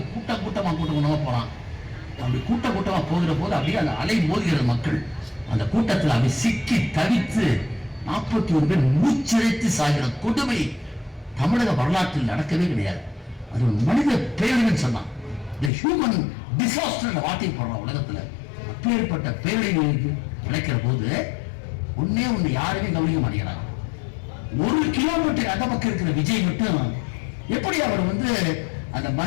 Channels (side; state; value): right; drops out; at 15.7 s